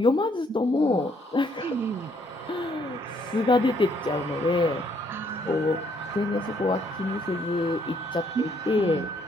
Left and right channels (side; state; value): both; normal; correlation 0.68